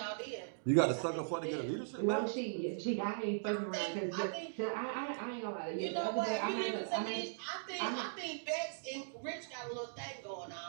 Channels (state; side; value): silent; left; digital silence